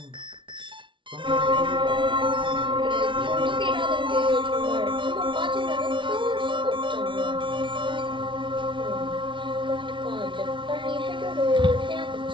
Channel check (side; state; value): left; late; 0.24 ms